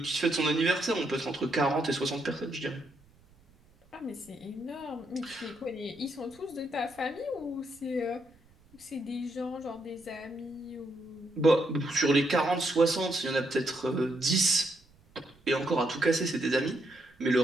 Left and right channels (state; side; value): noise; right; rumble, 29 dB below the sound